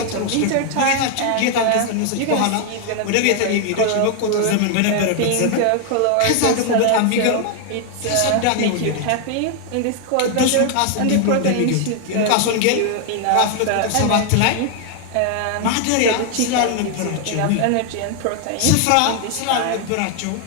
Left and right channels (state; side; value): different; both; correlation 0.00